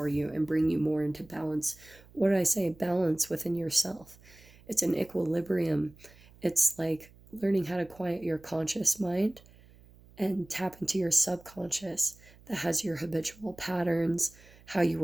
you and bring you more into balance. What did I say? Balance within yourself. It's an equilibrium. It's like learning how to quiet your conscious mind and tap into your subconscious that has your habitual patterns, how you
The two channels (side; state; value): right; noise; hum, 25 dB below the sound